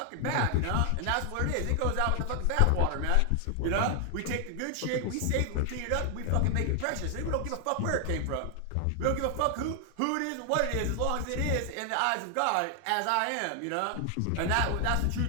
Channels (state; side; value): different; both; correlation 0.00